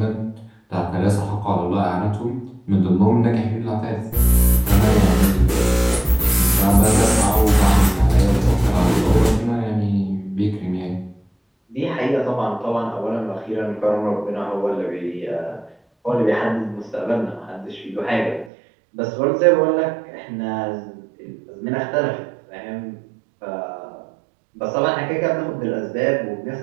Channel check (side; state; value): left; drops out; at 18.5 s